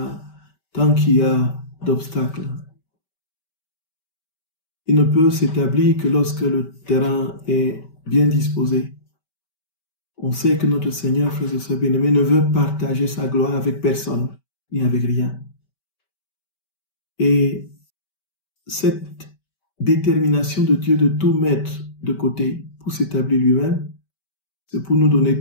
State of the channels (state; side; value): late; right; 5.2 ms